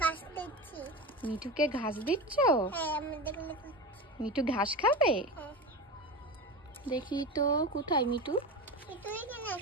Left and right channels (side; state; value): both; normal; correlation 0.25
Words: ঘাস দিচ্ছি। মিঠুকে ঘাস দিচ্ছ? হ্যাঁ, আমি দেখলে মিঠু ঘাস খাবে? হ্যাঁ। দেখি তো কোথায় মিঠু। তুই কেন